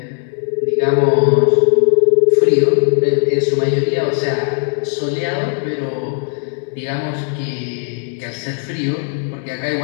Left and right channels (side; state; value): right; silent; 65 dB below the other